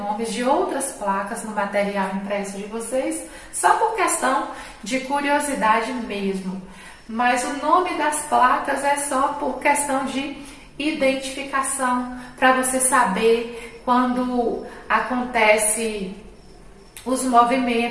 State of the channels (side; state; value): both; identical; correlation 1.00